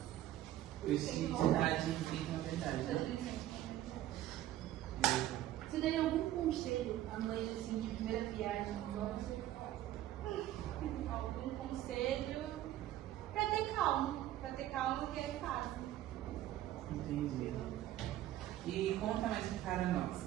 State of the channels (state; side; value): quieter; left; 13.5 dB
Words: Felicidade implica na verdade, né? Você daria algum conselho à mãe, assim, de primeira viagem? Algum conselho para ter calma que é fácil. Entendi. E conta mais para nós.